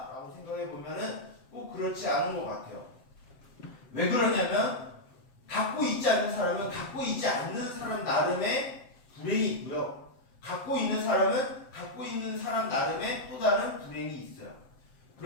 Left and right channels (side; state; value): right; late; 7.7 ms